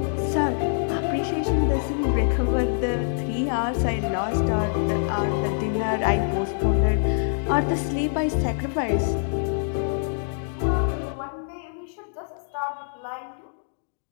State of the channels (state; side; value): silent; right; digital silence